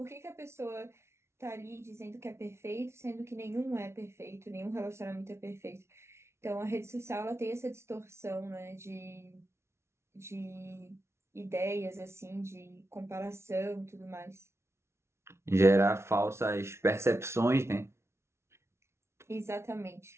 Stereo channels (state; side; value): late; left; 0.13 ms